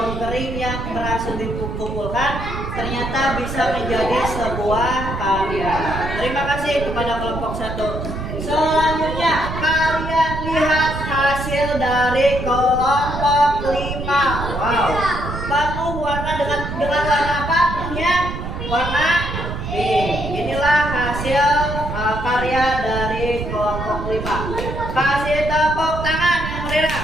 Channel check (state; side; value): noise; right; rumble, 6 dB below the sound